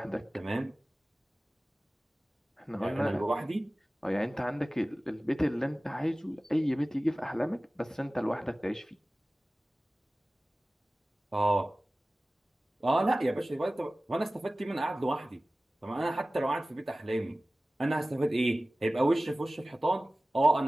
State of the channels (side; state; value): both; normal; correlation 0.97